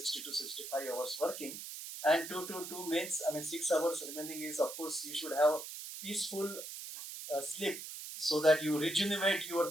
to 65 hours working. And 2 means, 6 hours remaining is, of course, you should have peaceful sleep so that you rejuvenate your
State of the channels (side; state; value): right; noise; hiss, 9 dB below the sound